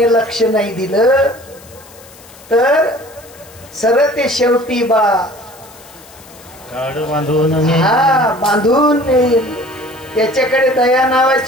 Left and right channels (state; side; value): noise; left; hiss, 23 dB below the sound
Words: लक्ष नाही दिलं तर सरळ ते शेवटी बा बांधून नेईल त्याच्याकडे दया